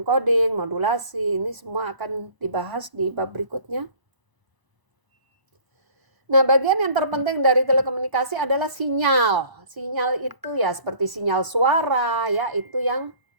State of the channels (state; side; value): late; left; 1.0 ms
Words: modulasi, ini semua akan dibahas di bab berikutnya. Nah, bagian yang terpenting dari telekomunikasi adalah sinyal. Sinyal itu ya seperti sinyal suara ya, itu yang